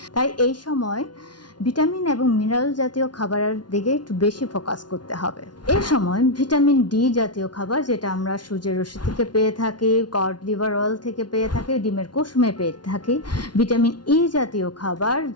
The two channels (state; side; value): late; right; 0.70 ms